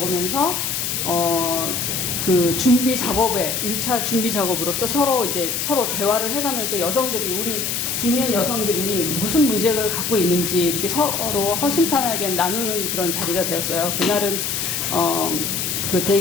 그 준비 작업에 1차 준비 작업으로서 서로 대화를 해가면서 우리 중년 여성들이 무슨 문제를 갖고 있는지 이렇게 서로 허심탄회하게 나누는 그런 자리가 되었어요. 그날은 그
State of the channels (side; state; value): left; noise; hiss, 1 dB below the sound